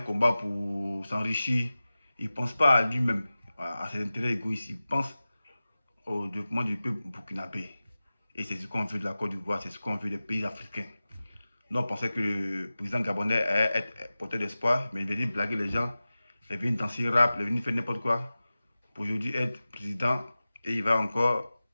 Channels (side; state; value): both; inverted; correlation -0.96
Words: combat pour s'enrichir. Il ne pense pas à lui-même, à ses intérêts égoïstes. Il pense au développement du peuple burkinabé. Et c'est ce qu'on veut de la Côte d'Ivoire, c'est ce qu'on veut des pays africains. Nous, on pensait que le président gabonais allait être porteur d'espoir, mais il est venu blaguer les gens. Il est venu danser rap, il est venu faire n'importe quoi. Pour aujourd'hui être président, et il va encore